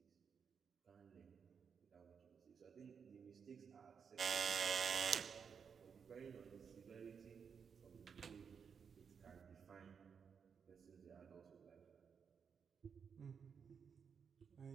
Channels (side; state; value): left; quieter; 6.6 dB